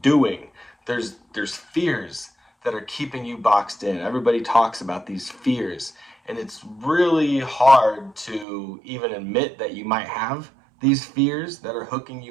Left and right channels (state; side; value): drops out; left; at 8.5 s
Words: doing. There's fears that are keeping you boxed in. Everybody talks about these fears, and it's really hard to even admit that you might have these fears that are hooking